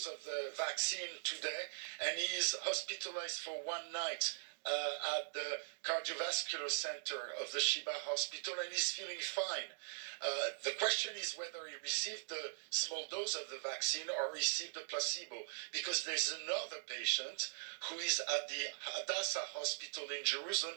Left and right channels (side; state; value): left; silent; digital silence